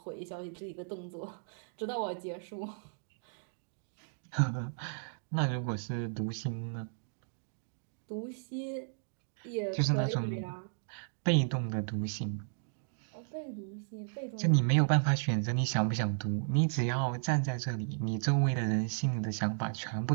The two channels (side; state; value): left; silent; digital silence